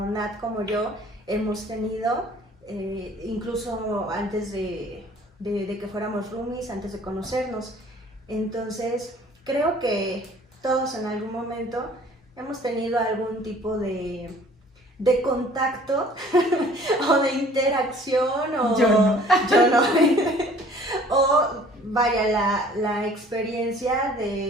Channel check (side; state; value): both; normal; correlation 0.53